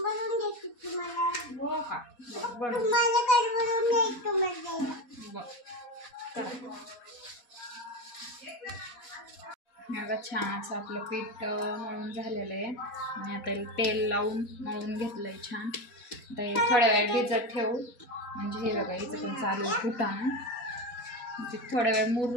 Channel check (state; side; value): late; right; 4.1 ms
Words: हो का? बघ छान असं आपलं पीठ मळून झालेलं आहे आणि आता तेल लावून मळून घेतलंय छान. आता हे थोड्या वेळ भिजत ठेवू. म्हणजे हे बघा इथं पण चालू आहे फुटाणं. ते थोड्या वेळ